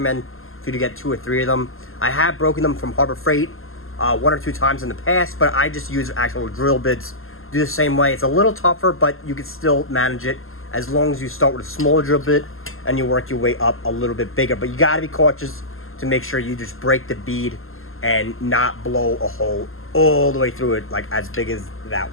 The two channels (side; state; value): right; late; 0.61 ms